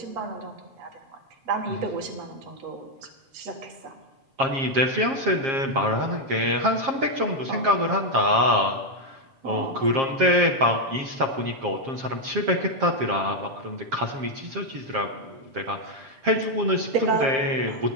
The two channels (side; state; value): left; late; 7.5 ms